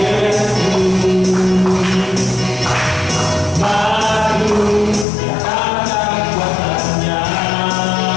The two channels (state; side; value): drops out; right; at 5.1 s